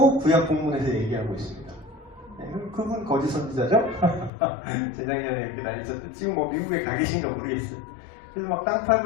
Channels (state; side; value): drops out; right; at 4.3 s